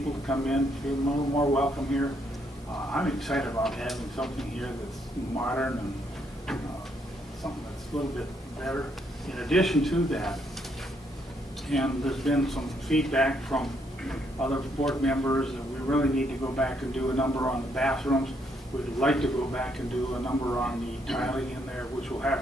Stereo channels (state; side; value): normal; both; correlation 0.73